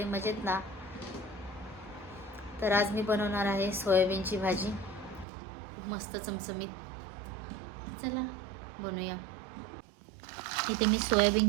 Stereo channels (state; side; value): drops out; left; at 5.2 s